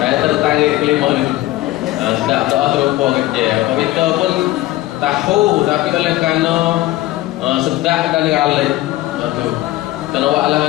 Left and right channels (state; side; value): quieter; right; 16.7 dB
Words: Saya tertangis kelima ni. Sedap doa terlupa kerja. Kita pun tahu, tapi oleh kerana sedap dan galak. Itu.